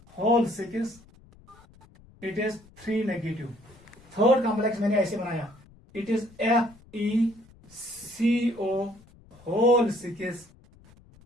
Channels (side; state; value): left; noise; rumble, 26 dB below the sound